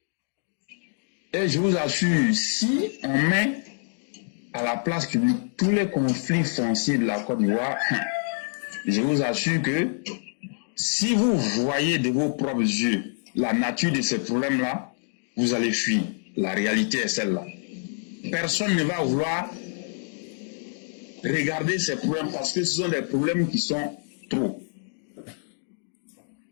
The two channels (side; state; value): right; silent; digital silence